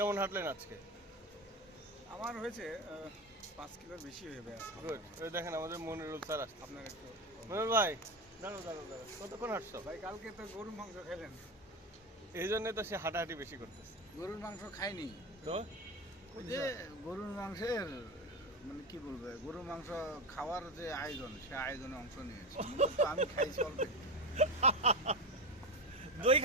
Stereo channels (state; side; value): normal; both; correlation 0.20